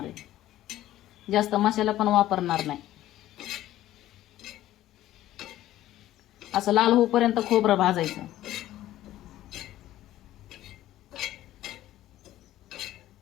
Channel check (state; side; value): quieter; right; 14.1 dB